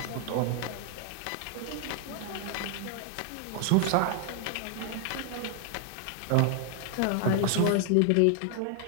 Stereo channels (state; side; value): different; both; correlation 0.00